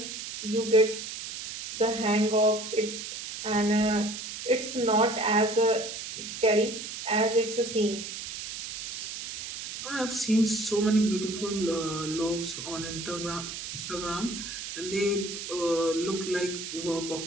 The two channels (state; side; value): noise; right; hiss, 8 dB below the sound